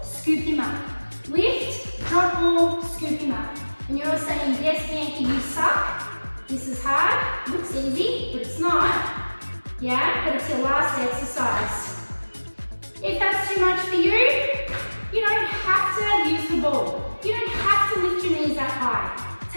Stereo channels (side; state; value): both; inverted; correlation -1.00